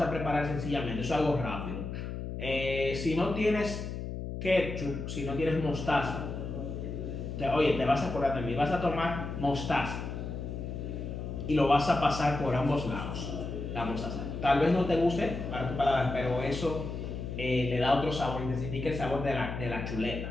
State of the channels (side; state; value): left; noise; hum, 6 dB below the sound